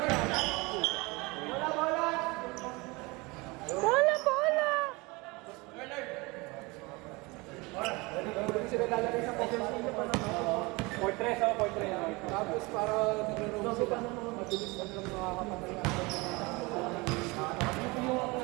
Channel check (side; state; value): left; quieter; 25.0 dB